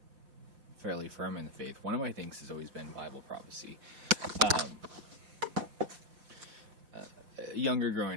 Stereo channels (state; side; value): late; left; 5.7 ms